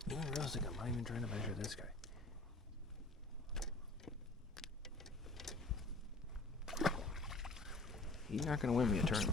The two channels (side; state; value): right; quieter; 3.0 dB